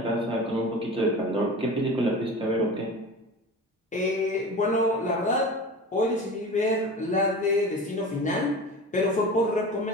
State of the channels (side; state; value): both; normal; correlation 0.34